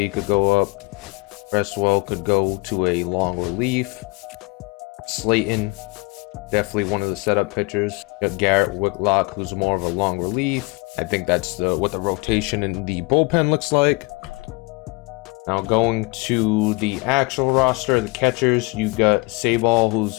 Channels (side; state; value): right; quieter; 26.4 dB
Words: could go up. Cresswell could go to a long relief. Slayton, definitely one of the setup pitchers. You got Garrett Whitlock, who's more of a long relief. I think that's what the rotation in the bullpen looks like. Now going to the actual roster, the catchers, you got Sabal, who's